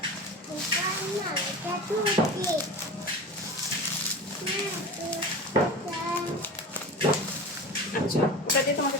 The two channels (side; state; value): both; normal; correlation 0.31